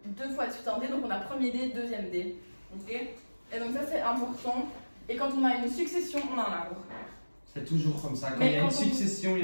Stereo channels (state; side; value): inverted; both; correlation -1.00